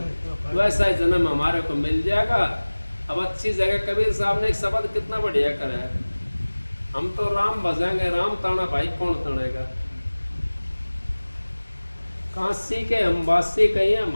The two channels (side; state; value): both; inverted; correlation -1.00